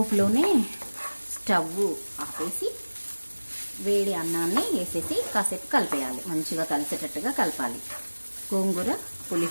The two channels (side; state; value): both; inverted; correlation -1.00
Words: స్టవ్ ఆపేసి వేడి అన్నాన్ని వేసేసి కాసేపు కలిపేయాలి. మంచిగా కలిసేటట్టుగా కలపాలి. గోంగూర